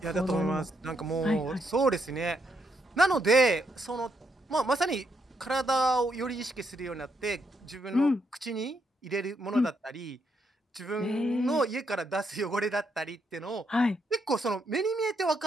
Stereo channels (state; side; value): normal; both; correlation 0.78